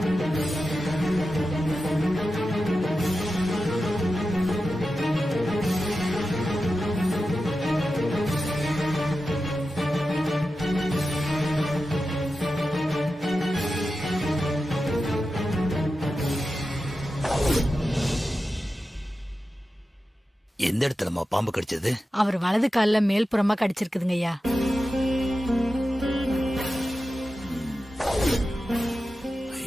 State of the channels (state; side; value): normal; both; correlation 0.92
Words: எந்த இடத்துலமா பாம்பு கடிச்சது? அவர் வலது கால்ல மேல்புறமா கடிச்சிருக்குதுங்க ஐயா.